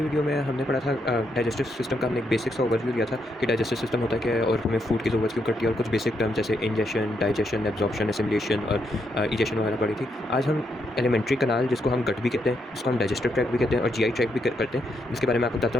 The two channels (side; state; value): both; normal; correlation 0.79